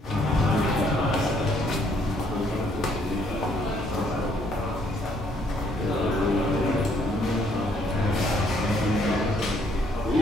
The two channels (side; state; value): both; normal; correlation 0.67